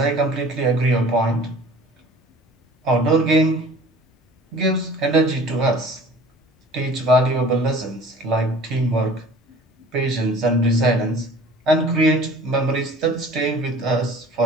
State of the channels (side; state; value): both; normal; correlation 0.46